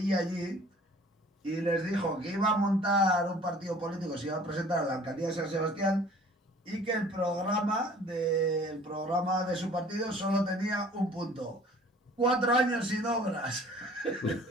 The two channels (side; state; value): both; normal; correlation 0.51